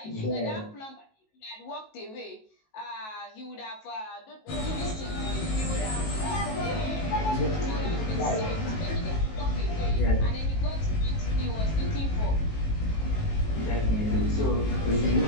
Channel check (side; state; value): right; late; 19 ms